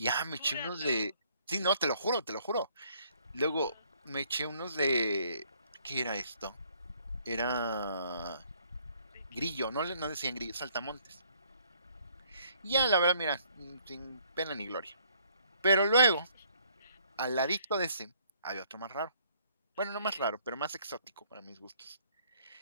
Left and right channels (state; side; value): inverted; both; correlation -0.64